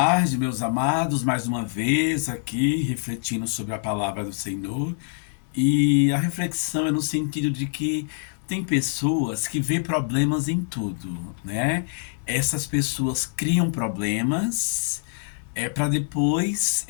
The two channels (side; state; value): right; silent; digital silence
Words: meus amados, mais uma vez aqui refletindo sobre a palavra do Senhor. E a reflexão é no sentido de que tem pessoas que vê problemas em tudo, né? Essas pessoas criam problemas para depois